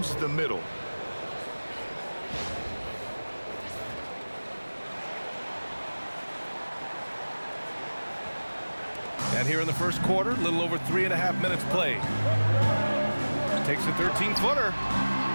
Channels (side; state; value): both; inverted; correlation -1.00